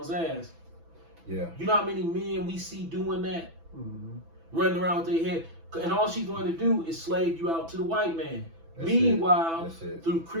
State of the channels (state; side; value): late; left; 6.1 ms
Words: ass. Yeah. You know how many men we see doing that? Mm-hmm. Running around with their head. And all she's going to do is slave you out to the white man. That's Meanwhile, it. through